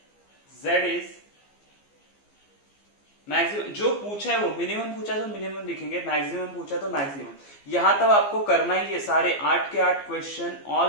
z इज मैक्सिमम जो पूछा है वो, मिनिमम पूछा तो मिनिमम लिखेंगे, मैक्सिमम पूछा तो मैक्सिमम। यहां तक आपको करना ही है, सारे 8 के 8 question,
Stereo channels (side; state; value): right; late; 15 ms